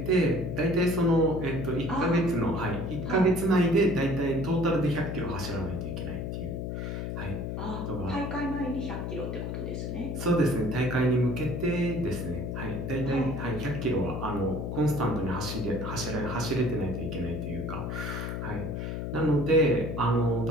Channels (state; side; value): noise; left; hum, 4 dB below the sound